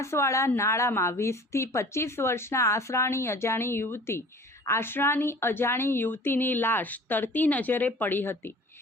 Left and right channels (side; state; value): both; normal; correlation 0.45